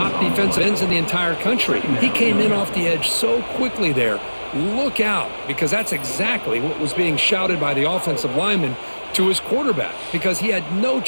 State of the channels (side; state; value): both; inverted; correlation -1.00